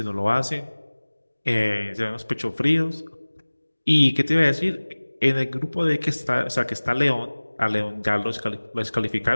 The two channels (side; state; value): both; inverted; correlation -1.00